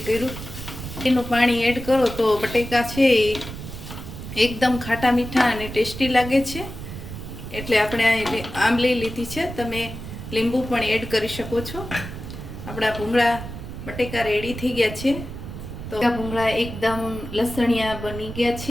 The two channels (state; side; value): noise; right; rumble, 10 dB below the sound